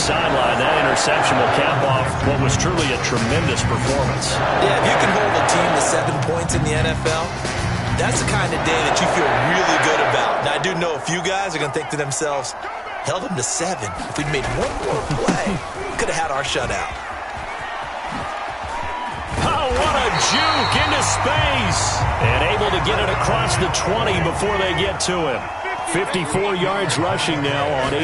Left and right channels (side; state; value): both; identical; correlation 1.00